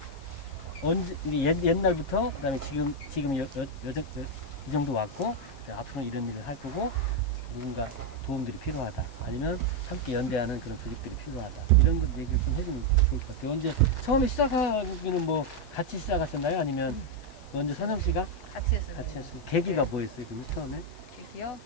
언제 옛날부터 그다음에 지금 이 정도 왔고 앞으로 이런 일을 할 거고 누군가 도움들이 필요하다. 아니면 함께 연대하는 그런 조직들이 필요하다. 이런 것 얘기를 좀 해주면 좋을 것 같아요. 언제 처음에 시작하기는 뭐 같이 시작하셨나요? 아니면 먼저 선영 씨가 같이 했어요. 같이 했어요. 계기가 뭐였어요? 그러면 처음에? 계기요?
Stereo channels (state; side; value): noise; left; hiss, 24 dB below the sound